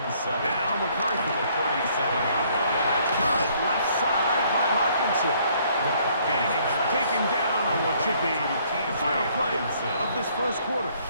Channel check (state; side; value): inverted; both; correlation -0.64